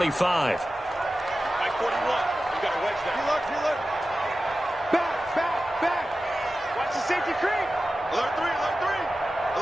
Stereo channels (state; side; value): normal; both; correlation 0.94